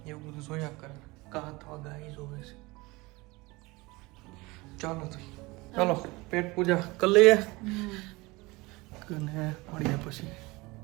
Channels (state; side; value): quieter; left; 23.0 dB